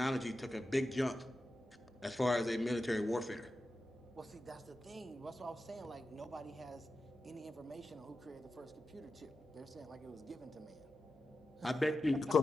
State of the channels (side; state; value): both; normal; correlation 0.91